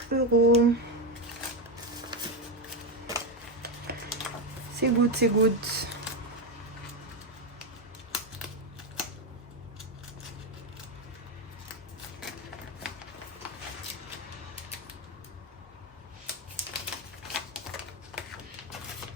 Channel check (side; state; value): both; normal; correlation 0.09